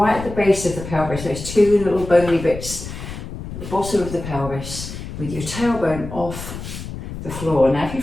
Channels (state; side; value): noise; left; rumble, 10 dB below the sound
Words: at the base of the pelvis, those two little bony bits at the bottom of the pelvis, with your tailbone off the floor. Now if you